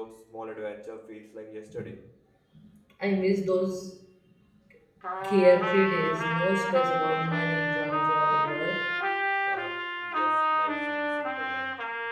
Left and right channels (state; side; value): identical; both; correlation 1.00